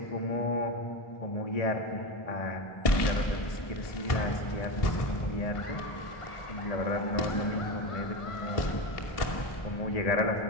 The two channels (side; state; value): right; late; 1.6 ms